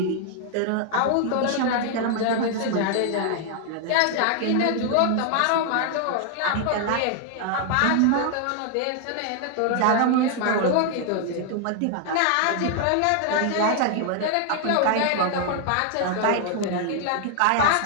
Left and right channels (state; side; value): different; both; correlation 0.00